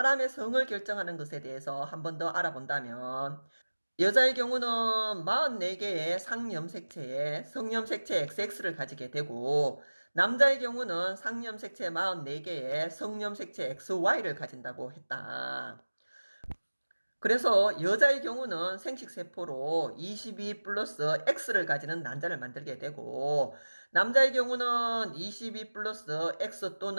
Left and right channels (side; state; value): both; inverted; correlation -1.00